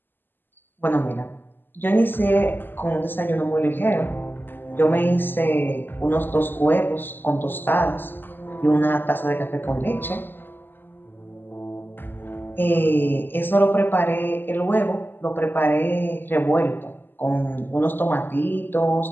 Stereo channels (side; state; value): right; late; 0.094 ms